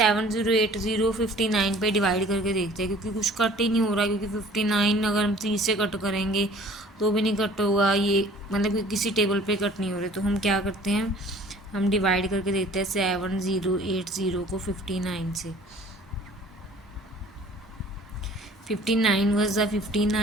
59 पे डिवाइड करके देखते हैं, क्योंकि कुछ कट ही नहीं हो रहा, क्योंकि 59 अगर हम 30 से कट करेंगे तो भी नहीं कट होगा, ये मतलब कि किसी टेबल पे कट नहीं हो रहे। तो हम क्या करते हैं, हम डिवाइड करके देखते हैं 7080 को 59 से, 59 वज द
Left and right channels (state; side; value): normal; both; correlation 0.50